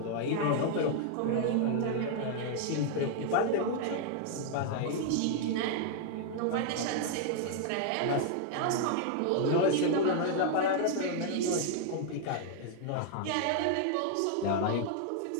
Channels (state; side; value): different; both; correlation 0.00